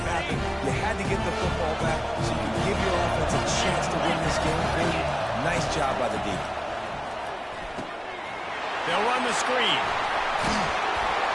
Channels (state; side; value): identical; both; correlation 1.00